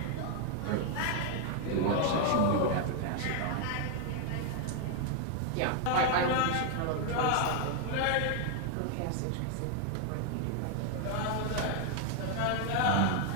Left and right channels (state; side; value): different; both; correlation 0.00